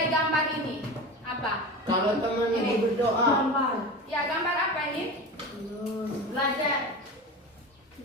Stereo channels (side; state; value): both; normal; correlation 0.29